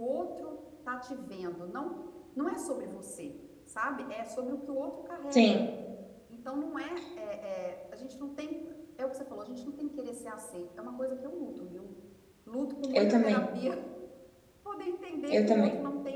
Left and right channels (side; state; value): both; identical; correlation 1.00